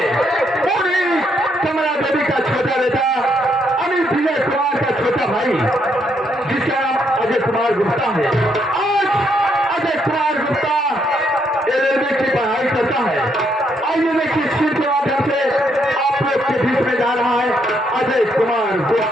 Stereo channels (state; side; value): normal; both; correlation 0.74